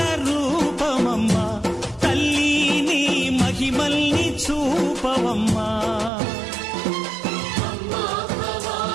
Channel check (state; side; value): drops out; left; at 6.1 s